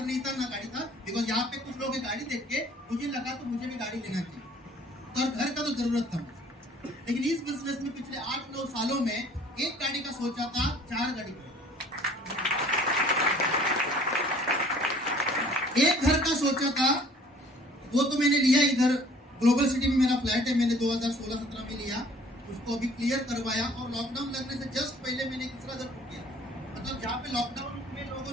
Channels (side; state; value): both; normal; correlation 0.54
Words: नहीं था ना गाड़ी था। बिकॉज यहाँ पे कुछ लोग गाड़ी देख के मुझे लगा तो मुझे भी गाड़ी लेना चाहिए, तो घर का तो जरूरत था मुझे। लेकिन इस बिजनेस में पिछले 8-9 सालों में एक गाड़ी का सोचा था, 4 गाड़ी का, एक घर का सोचा था, वो तो मैंने लिया। इधर ग्लोबल सिटी में मेरा फ्लैट है, मैंने 2016-17 में लिया। उसको अभी क्लियर करवाया और लॉकडाउन लगने से जस्ट पहले मैंने दूसरा घर बुक किया। मतलब जहाँ पे लॉकडाउन में लोगों